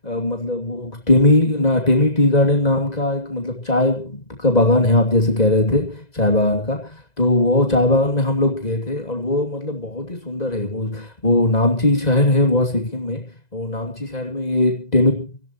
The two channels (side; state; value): right; late; 2.0 ms